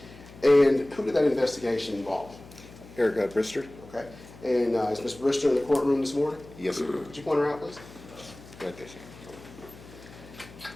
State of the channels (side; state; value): left; noise; hum, 19 dB below the sound